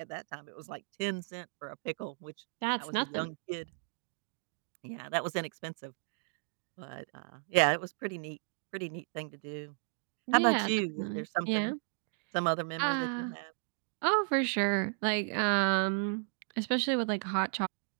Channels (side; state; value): left; silent; 55 dB below the other